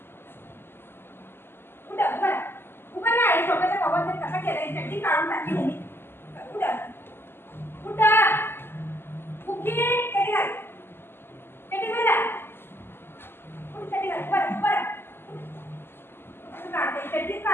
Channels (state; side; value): late; right; 0.11 ms